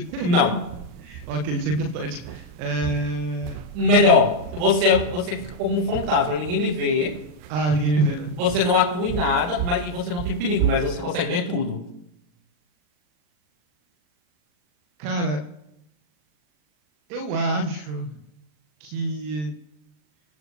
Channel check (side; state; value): left; late; 39 ms